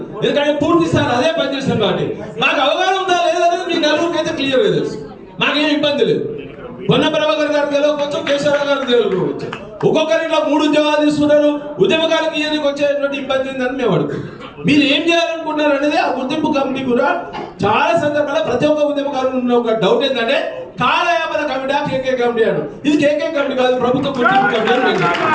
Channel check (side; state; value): both; identical; correlation 1.00